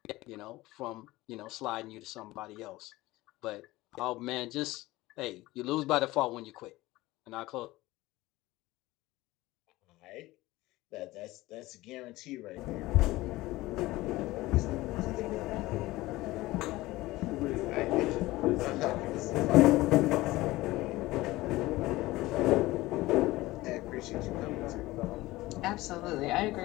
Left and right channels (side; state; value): right; quieter; 18.7 dB